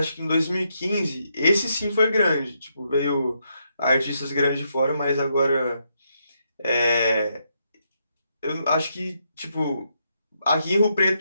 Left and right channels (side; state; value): both; inverted; correlation -0.79